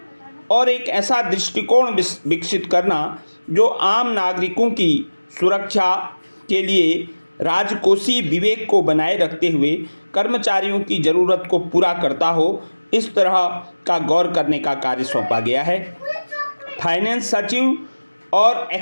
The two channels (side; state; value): both; inverted; correlation -1.00